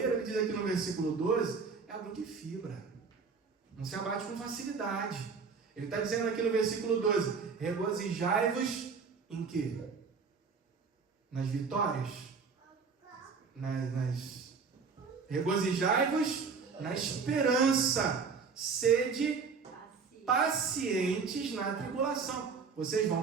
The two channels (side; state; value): left; quieter; 5.3 dB